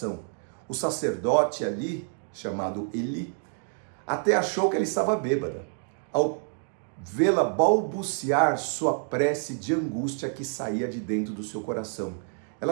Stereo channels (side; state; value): left; silent; 56 dB below the other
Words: O sacerdote ali, chamado Eli, até achou que ela estava bêbada, ao vê-la balbuciar sua prece de angústia que saía de dentro do seu coração.